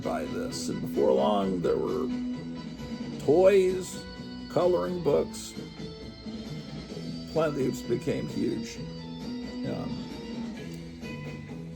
by this. And before long, there were toys, coloring books. Planet of the Apes became huge.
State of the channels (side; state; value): both; identical; correlation 1.00